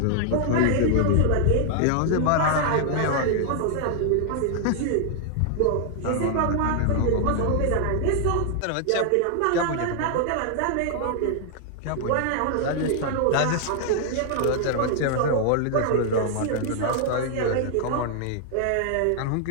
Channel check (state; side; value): different; both; correlation 0.00